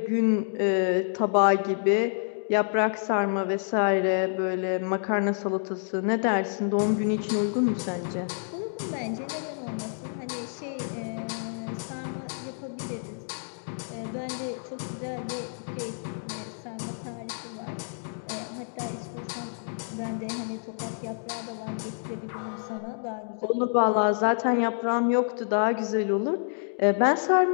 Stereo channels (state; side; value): silent; right; digital silence